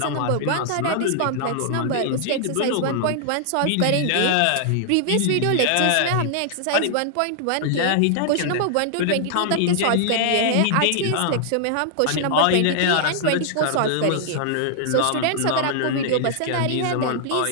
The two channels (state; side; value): different; both; correlation -0.01